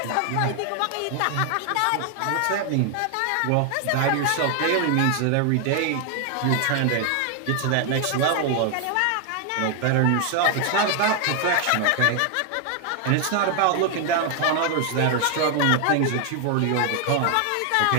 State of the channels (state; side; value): different; both; correlation 0.00